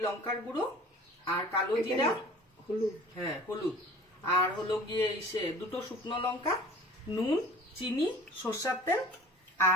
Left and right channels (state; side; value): normal; both; correlation 0.45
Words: লঙ্কার গুঁড়ো আর কালো জিরা, হলুদ, হ্যাঁ হলুদ, আর হলো গিয়ে দুটো শুকনো লঙ্কা, নুন, চিনি, সরষের তেল